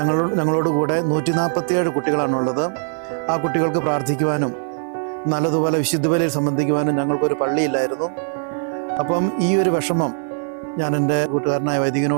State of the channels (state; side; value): silent; left; digital silence